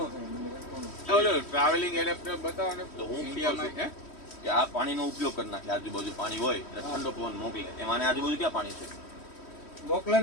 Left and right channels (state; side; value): late; right; 3.1 ms